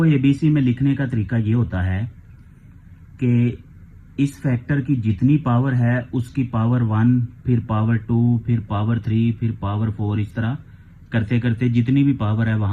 ABC में लिखने का तरीका ये होता है कि इस फैक्टर की जितनी पावर है उसकी पावर 1, फिर पावर 2, फिर पावर 3, फिर पावर 4, इस तरह करते करते जितनी भी पावर है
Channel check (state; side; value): identical; both; correlation 1.00